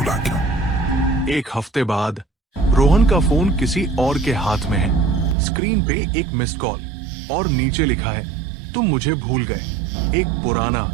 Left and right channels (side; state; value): left; drops out; at 5.4 s